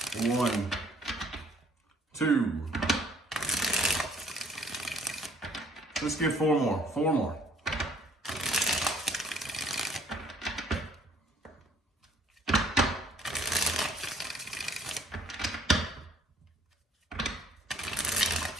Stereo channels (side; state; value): both; normal; correlation 0.60